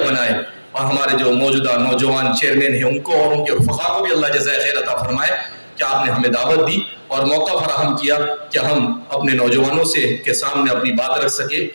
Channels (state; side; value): inverted; both; correlation -1.00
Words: بنائے. اور ہمارے جو موجودہ نوجوان چیئرمین ہیں ان کو اور ان کے رفقا کو بھی اللہ جزائے خیر عطا فرمائے کہ آپ نے ہمیں دعوت دی اور موقع فراہم کیا کہ ہم اپنے نوجوانوں سے کے سامنے اپنی بات رکھ سکے.